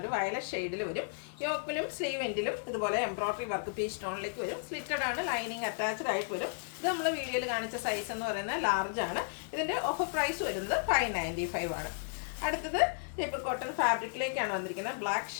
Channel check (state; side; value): silent; right; 55 dB below the other